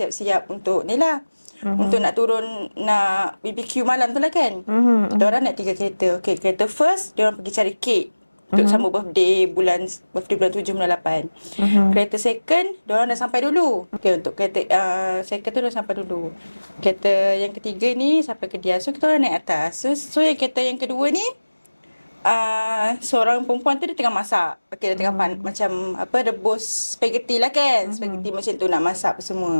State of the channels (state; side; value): inverted; both; correlation -1.00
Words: untuk ni lah. Untuk nak turun nak BBQ malam tu lah kan. Kita orang naik 3 kereta. Okay, kereta first dia orang pergi cari kek untuk sambut birthday bulan 7 bulan 8. Kereta second dia orang dah sampai dulu. Okay, untuk kereta second tu dah sampai dulu. Kereta yang ketiga ni sampai ke dia. So kita orang naik atas. So yang kereta yang kedua ni seorang perempuan tu dia tengah masak. Okay, dia tengah macam rebus spaghetti lah kan. Spaghetti macam tu nak masak apa